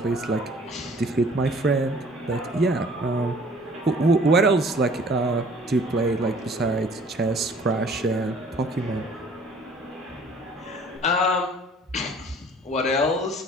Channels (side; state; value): both; normal; correlation 0.53